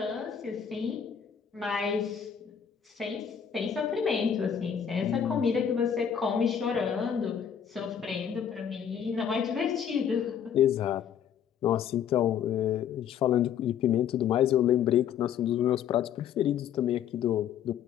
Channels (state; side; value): quieter; right; 8.5 dB